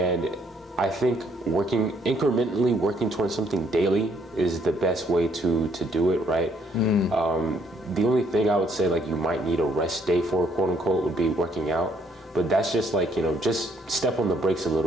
I think incrementally working towards something daily is the best way to do it, right? The only thing I would say, like, you might need a rest day for, quote unquote, would be working out. But that's just like, you know, just step on the brakes a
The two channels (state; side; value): normal; both; correlation 0.68